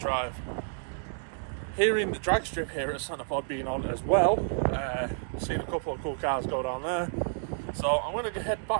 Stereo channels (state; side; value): silent; left; digital silence